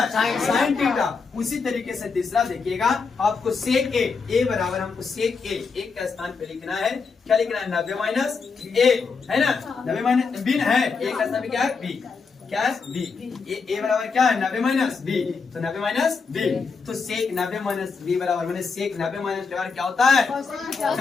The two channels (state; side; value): quieter; right; 5.0 dB